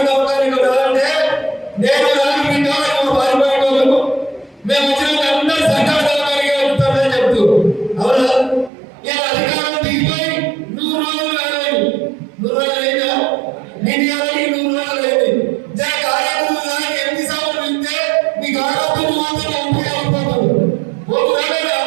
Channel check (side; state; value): left; drops out; at 8.7 s